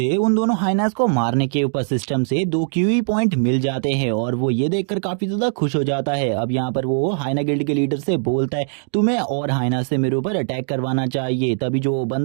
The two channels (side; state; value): left; silent; digital silence